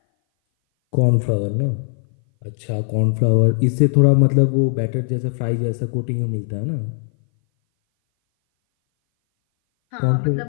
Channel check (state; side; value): silent; right; 59 dB below the other